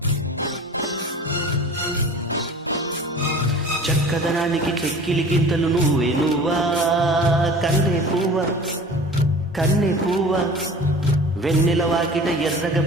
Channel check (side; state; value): both; normal; correlation 0.41